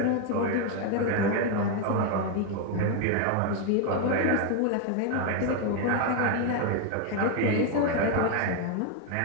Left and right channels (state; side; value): different; both; correlation 0.01